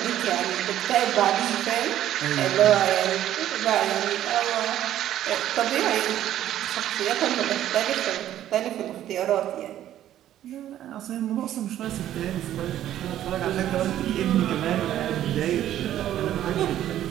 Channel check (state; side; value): quieter; left; 12.1 dB